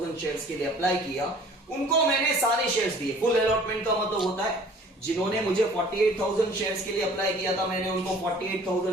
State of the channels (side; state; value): both; normal; correlation 0.51